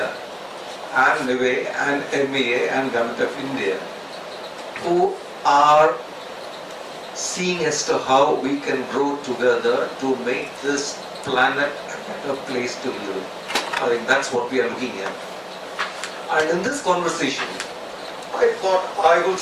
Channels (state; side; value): identical; both; correlation 1.00